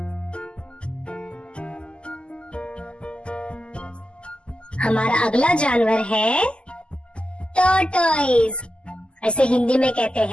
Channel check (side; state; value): right; late; 0.052 ms